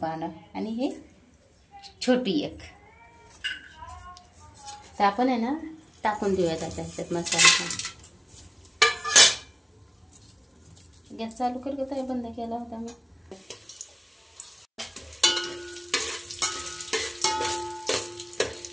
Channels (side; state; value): both; identical; correlation 1.00